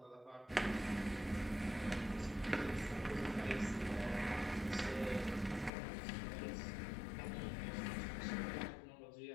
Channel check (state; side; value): drops out; right; at 5.7 s